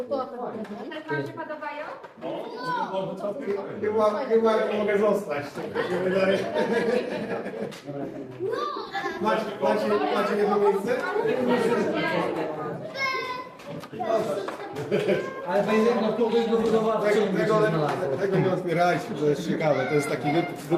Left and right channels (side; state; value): both; identical; correlation 1.00